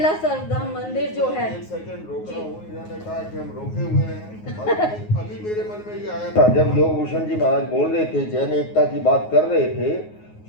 सर्वधर्म मंदिर जो है, एक सेकंड रोक रहा हूँ, इन्होंने कहा कि हम रोके हुए हैं। अभी मेरे मन में ये आया था जब योग भूषण जी महाराज बोल रहे थे, जैन एकता की बात कर रहे थे,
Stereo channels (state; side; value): late; right; 9.5 ms